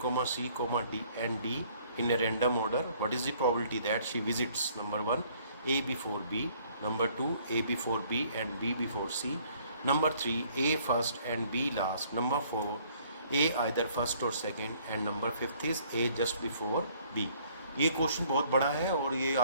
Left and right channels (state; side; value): inverted; both; correlation -0.61